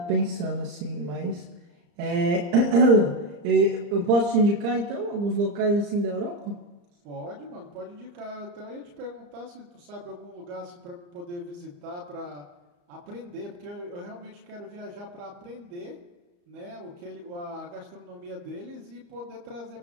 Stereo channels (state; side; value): late; left; 34 ms